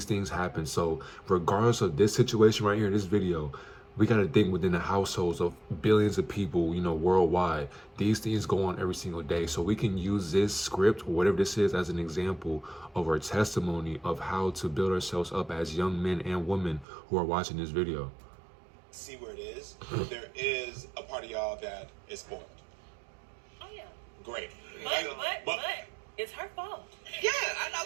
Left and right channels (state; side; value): drops out; left; at 16.9 s